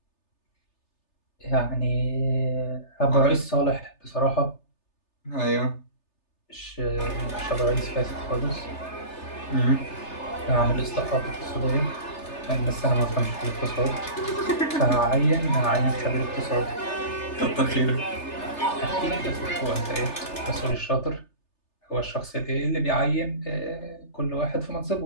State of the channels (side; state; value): right; late; 3.3 ms